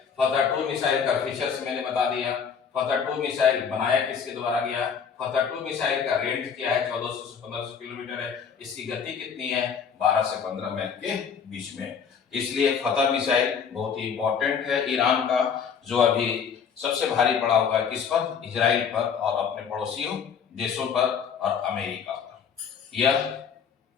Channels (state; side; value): quieter; right; 6.9 dB